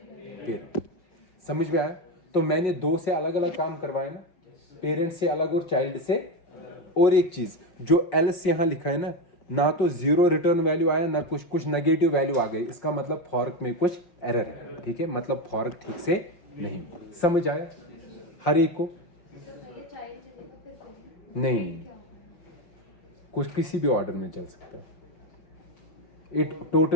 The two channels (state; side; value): late; right; 5.6 ms